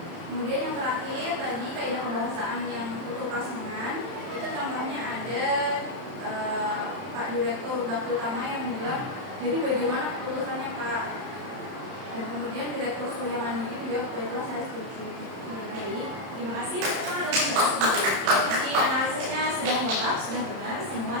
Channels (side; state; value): left; late; 31 ms